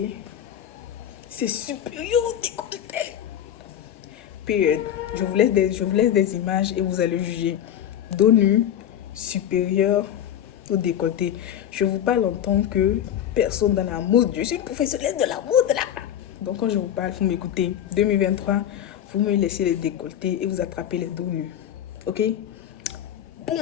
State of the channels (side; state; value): right; quieter; 10.4 dB